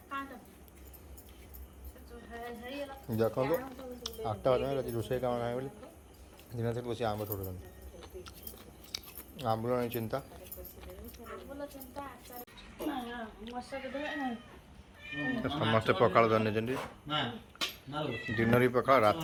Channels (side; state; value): both; identical; correlation 1.00